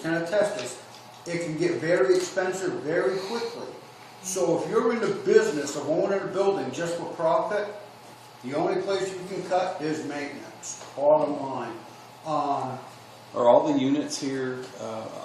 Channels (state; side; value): identical; both; correlation 1.00